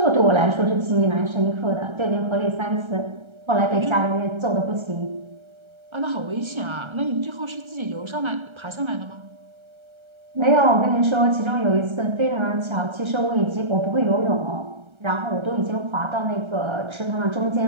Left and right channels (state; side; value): late; left; 1.3 ms